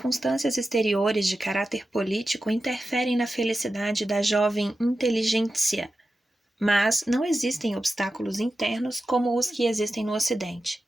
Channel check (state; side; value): normal; both; correlation 0.92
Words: exteriores de caráter político interferem na felicidade da jovem inteligência, mas não existem obstáculos internos como os que existem no Ocidente.